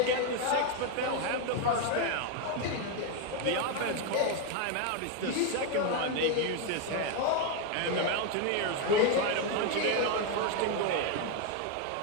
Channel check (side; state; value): both; different; correlation 0.01